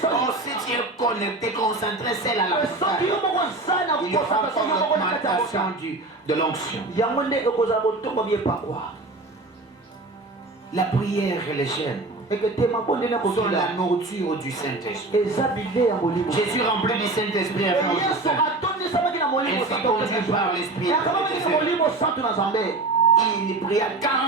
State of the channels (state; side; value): quieter; left; 3.0 dB